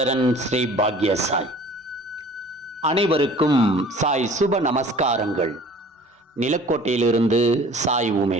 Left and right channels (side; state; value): both; normal; correlation 0.48